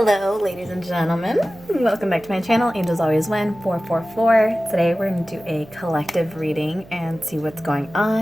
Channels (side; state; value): right; noise; hum, 21 dB below the sound